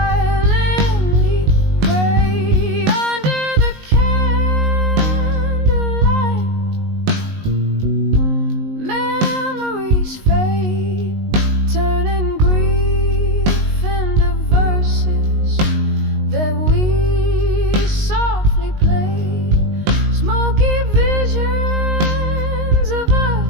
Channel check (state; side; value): late; left; 19 ms